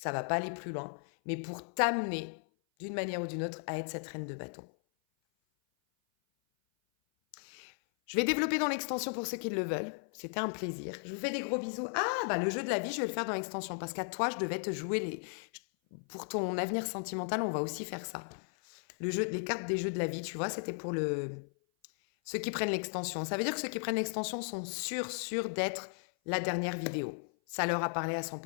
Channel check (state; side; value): silent; right; 54 dB below the other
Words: ça va pas aller plus loin. Mais pour t'amener d'une manière ou d'une autre, à être cette reine de bâton. Je vais développer dans l'extension pour ceux qui le veulent. C'était un plaisir. Je vous fais des gros bisous. Ah, bah le jeu de la vie, je vais le faire dans l'extension parce qu'à toi, je devais te jouer les... Pour ton avenir sentimental, on va aussi faire ça. Les cartes des jeux de la vie, tu vois, c'était pour ceux qui prennent l'extension. Ça veut dire que ceux qui prennent l'extension sont sûrs d'être la dernière vidéo. Ça leur a parlé à